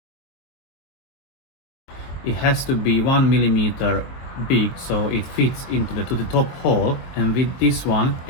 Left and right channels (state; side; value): late; right; 23 ms